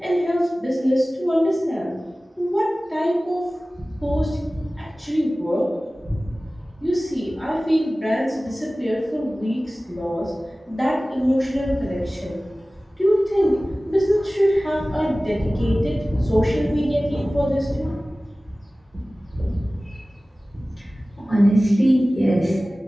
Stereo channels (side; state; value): both; normal; correlation 0.97